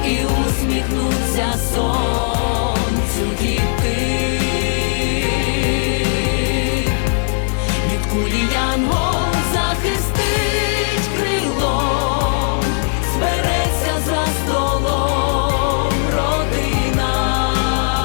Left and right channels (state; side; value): silent; right; 62 dB below the other